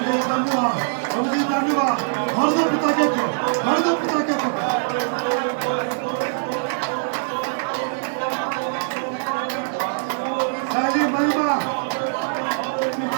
धन्यवाद, प्रभु जी धन्यवाद। भर दो पिता के को, भर दो पिता के को। पहली महिमा,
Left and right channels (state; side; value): silent; left; digital silence